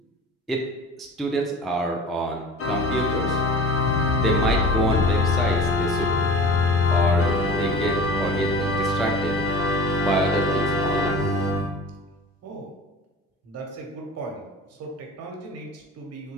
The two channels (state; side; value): normal; both; correlation 0.38